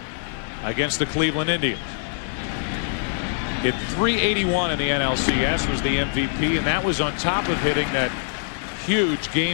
against the Cleveland Indians. Hit .381 in the NLCS, was the MVP, and that was on top of hitting that huge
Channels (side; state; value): right; silent; 63 dB below the other